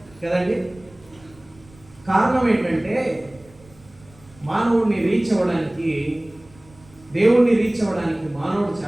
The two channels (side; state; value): right; noise; rumble, 26 dB below the sound